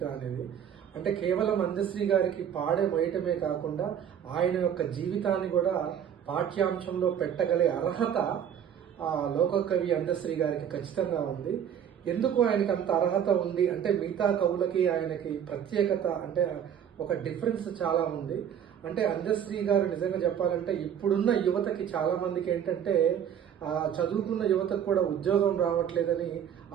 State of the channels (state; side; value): quieter; left; 9.0 dB